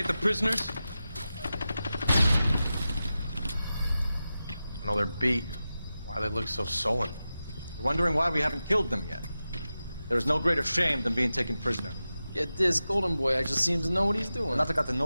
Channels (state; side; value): inverted; both; correlation -0.93